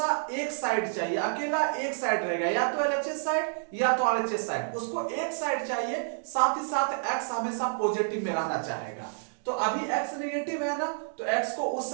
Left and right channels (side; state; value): left; silent; digital silence